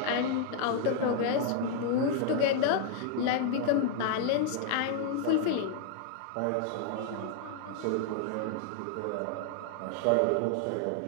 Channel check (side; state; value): both; different; correlation 0.00